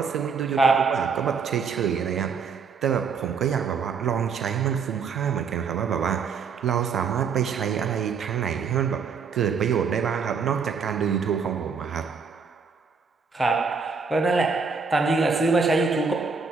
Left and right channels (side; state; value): left; quieter; 5.5 dB